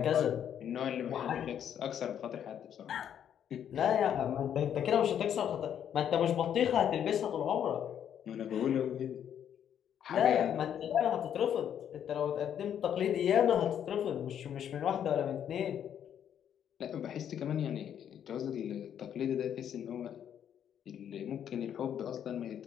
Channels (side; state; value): right; quieter; 9.3 dB